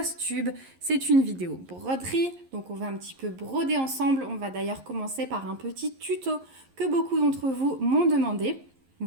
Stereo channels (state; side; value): late; left; 11 ms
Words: tube, c'est une vidéo broderie. Donc on va un petit peu broder ensemble. On va d'ailleurs commencer par un petit tuto que beaucoup d'entre vous m'ont demandé.